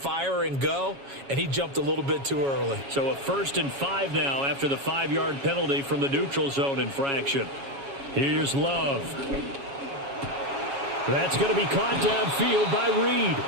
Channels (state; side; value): late; left; 7.2 ms